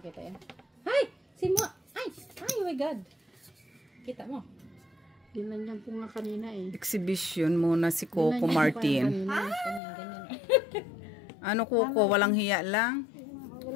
yan. Ay! Si Mo! Ay! Ay, oh my God! Kita mo. Ginanyan ko nga kanina eh. Exhibition muna si Coco Ginanyan ko Martin. kanina. Ganyan, ganyan. Ano Coco? Walang hiya lang?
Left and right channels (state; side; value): drops out; right; at 9.8 s